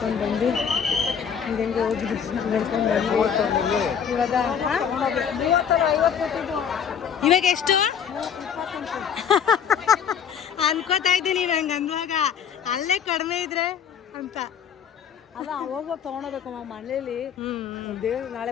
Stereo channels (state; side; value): quieter; right; 7.7 dB